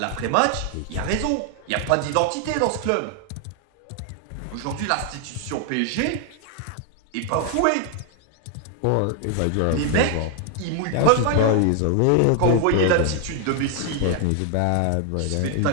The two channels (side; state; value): both; different; correlation 0.00